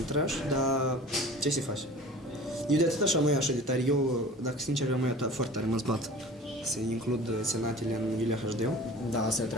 trash, dar ce se face? Eu de atât așa mai așa de tare, eu, dacă sincer, am mai foarte tare mă zbat să includ senatele în Iulia HD, Da, asta e o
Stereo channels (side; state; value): both; normal; correlation 0.41